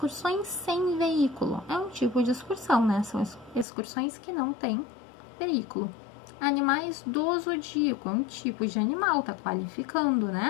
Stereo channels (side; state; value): right; drops out; at 3.7 s